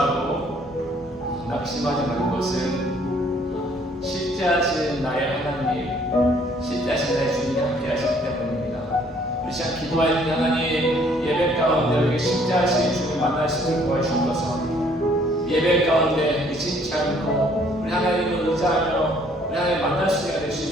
낙심하지 말 것은 실제하신 나의 하나님, 실제하신 나의 주님이 함께 하시기 때문입니다. 우리 시간 기도할 때 하나님 예배 가운데 우리 실제하신 주님 만날 수 있도록 도와주셔서 예배 가운데 의심치 않고 우리 하나님을 의지하며 우리 하나님 만날 수 있게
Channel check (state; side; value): normal; both; correlation 0.62